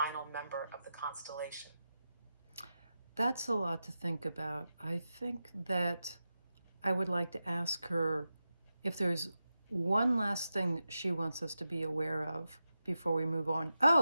member of the constellation? That's a lot to think about. I think that I would like to ask her if there's one last thing that she wants us to be aware of before we move on.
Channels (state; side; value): inverted; both; correlation -0.91